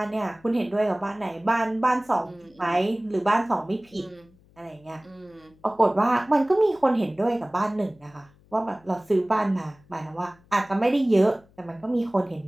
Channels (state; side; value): noise; left; hum, 29 dB below the sound